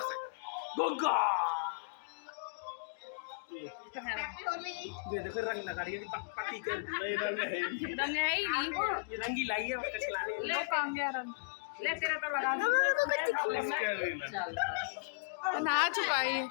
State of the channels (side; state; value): right; quieter; 35.7 dB